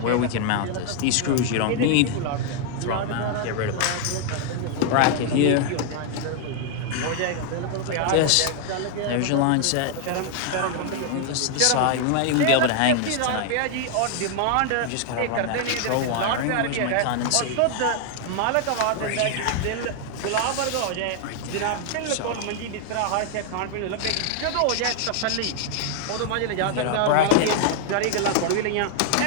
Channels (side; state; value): both; different; correlation 0.00